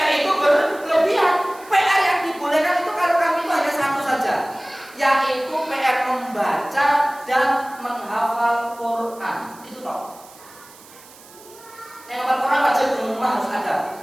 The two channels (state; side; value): noise; right; hiss, 22 dB below the sound